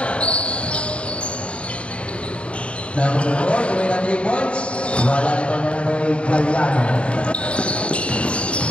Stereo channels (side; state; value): right; late; 0.060 ms